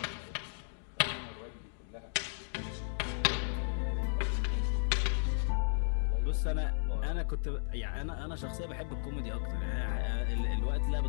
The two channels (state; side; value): silent; right; digital silence